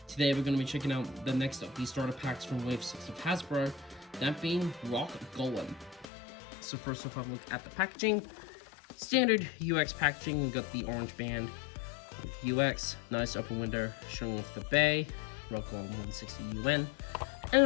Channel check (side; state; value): right; drops out; at 6.1 s